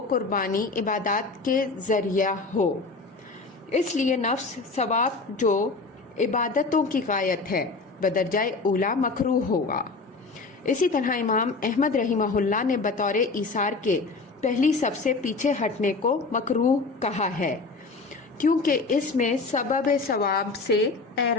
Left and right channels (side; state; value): right; quieter; 3.9 dB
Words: قربانی عبادات کے ذریعہ ہو، اس لیے نفس ثواب جو عبادتوں کی غایت ہے بدرجہ اولا مکروہ ہوگا۔ اسی طرح امام احمد رحمہ اللہ نے بطور ایثار کے پہلی صف سے پیچھے ہٹنے کو مکروہ کہا ہے، کیونکہ اس میں سبب ثواب سے